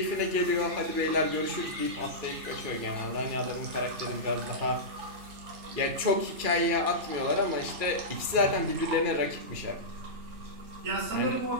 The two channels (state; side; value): late; left; 2.4 ms